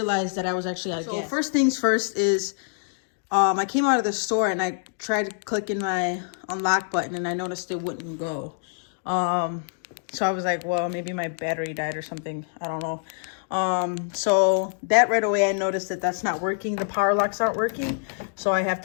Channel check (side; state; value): right; silent; digital silence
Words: that I was actually out of gas. So first things first is I came out of the store and I tried clicking my unlock button and I noticed it wouldn't go. So I was like, well, maybe my battery died or something. I don't know. So that right away, I noticed that that's not working. The power locks aren't working. So I have